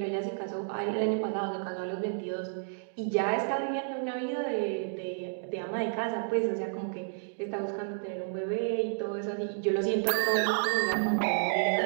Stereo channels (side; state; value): left; silent; digital silence